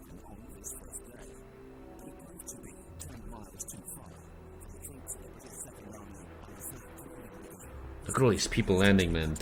on this first day, but it proved to be 10 miles too far for the troops of the British Second Army and the 3rd Canadian Division, whose task it was to take the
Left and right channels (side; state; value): both; identical; correlation 1.00